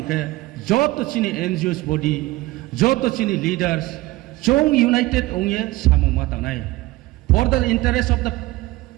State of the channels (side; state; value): left; quieter; 19.2 dB